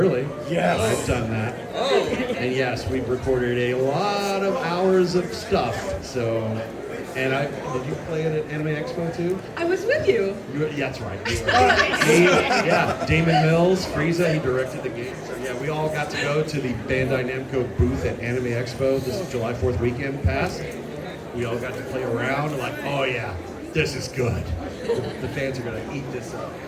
Yes. I've done that. And yes, we've recorded a lot of hours of stuff. So, and did you play it at Anime Expo too? I was with you. Yeah, that's right. Yeah, Damon Mills, Frieza, he directed the game. So yeah, we all got to go to the Bandai Namco booth at Anime Expo this July 4th weekend past. We all got to play around like, oh yeah, this is good. The fans are gonna eat this up.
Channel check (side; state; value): both; identical; correlation 1.00